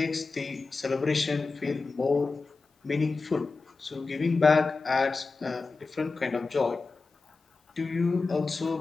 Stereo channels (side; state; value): right; quieter; 4.0 dB